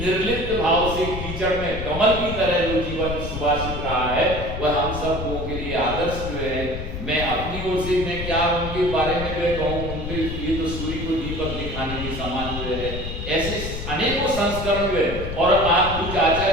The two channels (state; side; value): noise; left; rumble, 6 dB below the sound